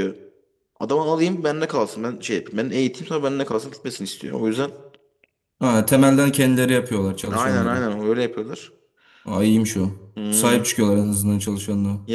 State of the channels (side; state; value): both; identical; correlation 1.00